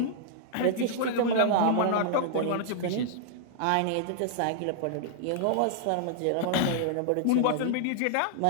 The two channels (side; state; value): both; different; correlation -0.01